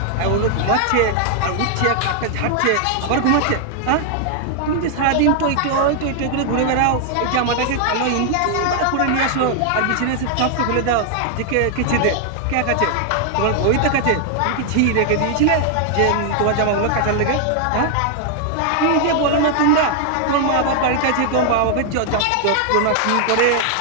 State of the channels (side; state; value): both; different; correlation 0.00